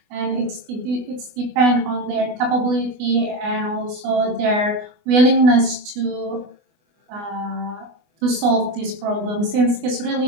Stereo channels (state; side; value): late; left; 24 ms